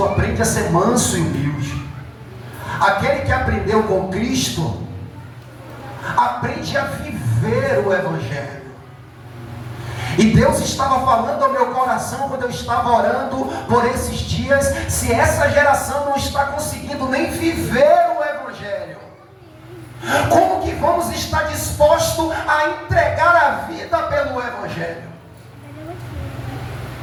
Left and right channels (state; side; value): identical; both; correlation 1.00